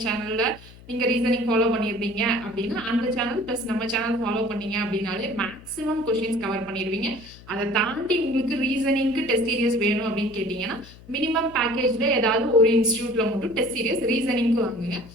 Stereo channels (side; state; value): left; noise; hum, 20 dB below the sound